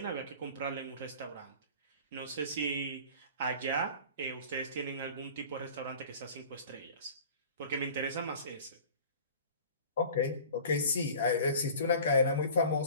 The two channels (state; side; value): inverted; both; correlation -0.42